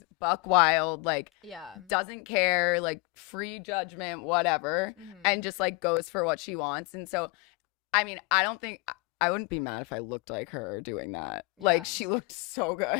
buck wild, like, Yeah. doesn't care, like, free judgment, whatever, and just, like, goes for what she wants. And so, I mean, I wouldn't be mad if I looked like her doing that. Yeah. Like, she looked so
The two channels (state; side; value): quieter; right; 26.5 dB